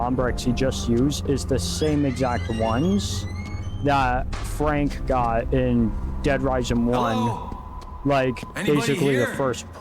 he just used is the same exact ones that Frank got in Dead Rising 1. Hello? Like Anybody basically the here? first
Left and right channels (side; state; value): both; identical; correlation 1.00